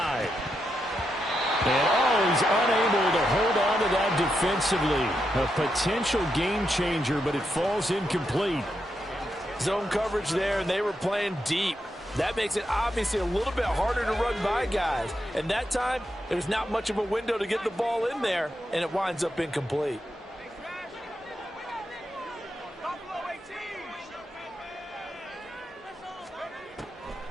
And he's unable to hold on to that defensively. A potential game changer, but it falls incomplete. Zone coverage there, and they were playing deep. That makes it obviously a little bit harder to run by guys. And that time, there's not much of a window to get the ball in there, and it winds up incomplete.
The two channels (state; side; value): normal; both; correlation 0.84